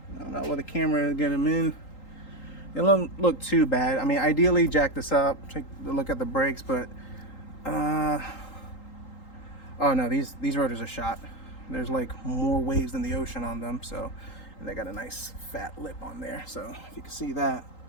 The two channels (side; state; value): right; late; 3.8 ms